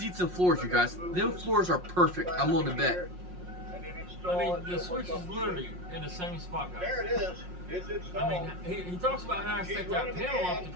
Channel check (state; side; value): late; left; 5.6 ms